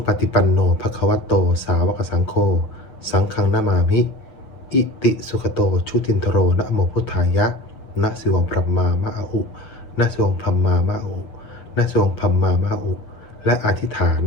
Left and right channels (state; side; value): late; right; 7.5 ms